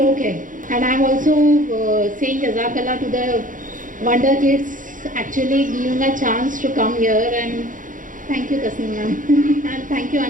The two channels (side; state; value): left; late; 0.38 ms